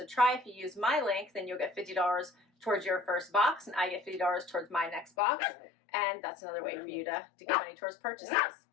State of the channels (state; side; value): drops out; right; at 5.1 s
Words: try. If you use my link, then you'll get $50 towards your first box, and I get $50 towards my next box. And that's another way for you to get money towards purchases.